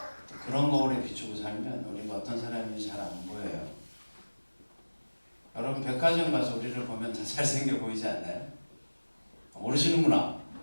그런 거울에 비추고 살면 우리가 어떤 사람인지 잘 안 보여요. 여러분 백화점 가서 우리를 보면 다 잘생겨 보이지 않나요? 모르시는구나.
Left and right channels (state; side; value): inverted; both; correlation -1.00